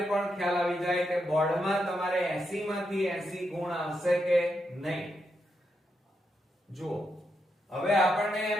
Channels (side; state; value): both; normal; correlation 0.83